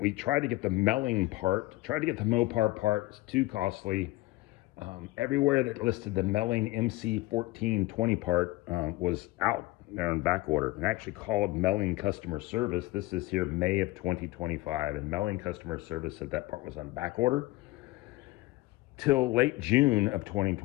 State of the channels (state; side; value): quieter; right; 19.7 dB